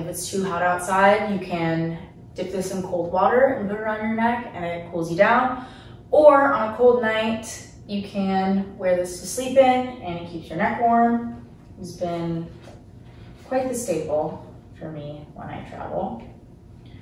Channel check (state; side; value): identical; both; correlation 1.00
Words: it's too hot outside, you can dip this in cold water and put it around your neck and it cools you down. Or on a cold night, you can wear this to sleep in and it keeps your neck warm. It's been quite the staple for me when I travel.